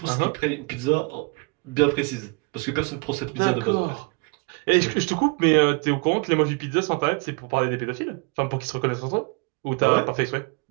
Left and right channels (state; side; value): quieter; left; 32.0 dB